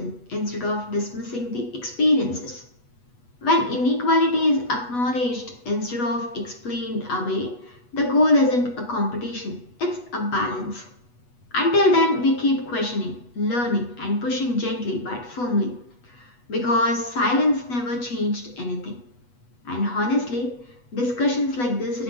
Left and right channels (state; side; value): late; right; 8.2 ms